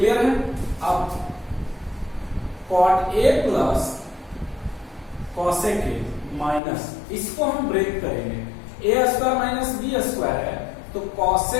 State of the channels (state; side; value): drops out; right; at 6.6 s